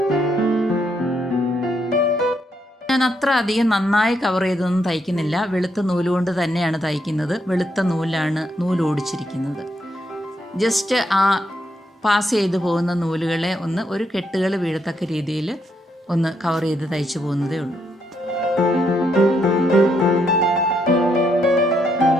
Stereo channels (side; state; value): both; normal; correlation 0.76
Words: ഞാൻ അത്ര അധികം നന്നായി കവർ ചെയ്തൊന്നും തയ്ക്കുന്നില്ല. വെളുത്ത നൂലുകൊണ്ട് തന്നെയാണ് തയ്ക്കുന്നത്. വെളുത്ത നൂലാണ് നൂലോടിച്ചിരിക്കുന്നത്. ജസ്റ്റ് ആ പാസ് ചെയ്ത് പോകുന്ന നൂലുകളെ ഒരു കെട്ടുകൾ വീഴത്തക്ക രീതിയിൽ ഒന്ന് കവർ ചെയ്ത് തയ്ച്ചു പോകുന്നതേ ഉള്ളൂ.